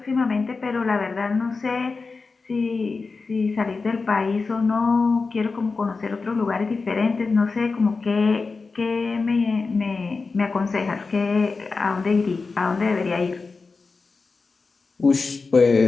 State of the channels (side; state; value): right; quieter; 4.2 dB